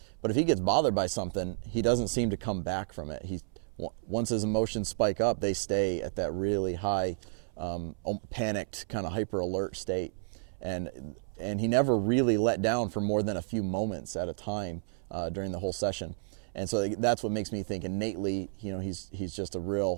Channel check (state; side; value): silent; left; 57 dB below the other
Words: But if he gets bothered by something, he doesn't seem to come back from it. Once his emotions spike up, they stay at that really high, panicked, kind of hyper alert state, and he never really let down for more than a few moments at a time during the whole session. And so that's what makes me think innately, he's just a